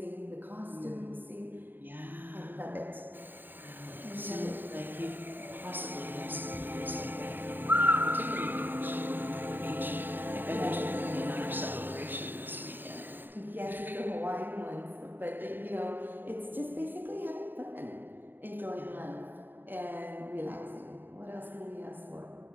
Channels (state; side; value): late; left; 0.092 ms